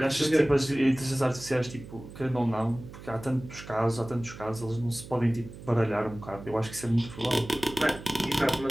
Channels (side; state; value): right; noise; hum, 15 dB below the sound